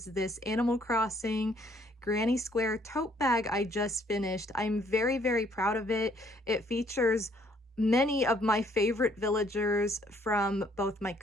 this Animal Crossing Granny Square tote bag I just finished. I'm very, very proud of it. It features many of my favorite villagers from both my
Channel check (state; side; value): normal; both; correlation 0.64